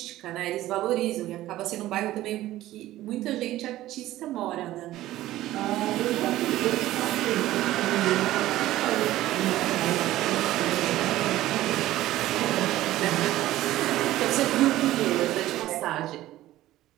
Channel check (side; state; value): left; quieter; 15.2 dB